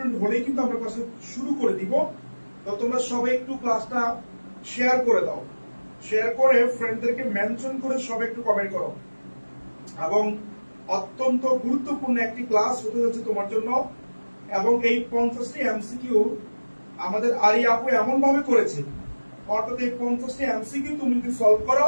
হলেই কিন্তু আমরা ক্লাসে শুরু করে দিব। তো তোমরা সবাই একটু ক্লাসটা শেয়ার করে দাও, শেয়ার করে ফ্রেন্ডদেরকে মেনশন করে সবাই একটু কমেন্ট করো। এবং অত্যন্ত গুরুত্বপূর্ণ একটি ক্লাস হতে যাচ্ছে তোমার জন্য। এবং এই 50টি এমসিকিউ আমাদের আরি আপু এমন ভাবে করেছে, অর্থাৎ এই 50টি এমসিকিউ তুমি যদি সলভ করো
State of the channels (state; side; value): inverted; both; correlation -1.00